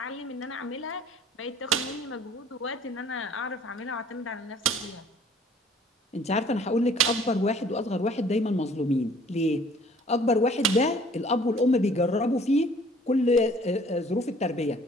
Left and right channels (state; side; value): normal; both; correlation 0.54